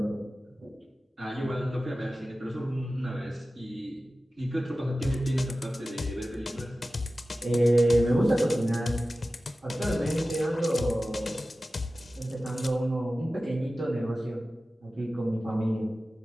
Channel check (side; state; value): both; normal; correlation 0.95